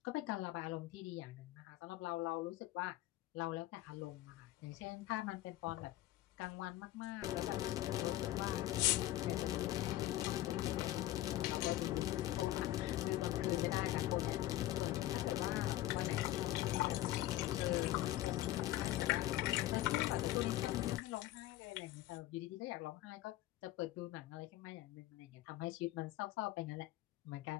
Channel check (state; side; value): quieter; right; 15.3 dB